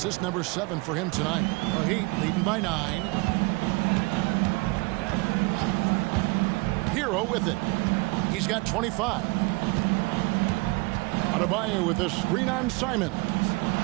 number 7 for him tonight. The Heat leading by 9. Hero with it. He's got 25. Adebayo with a screen on Simons.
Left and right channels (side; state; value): left; quieter; 26.4 dB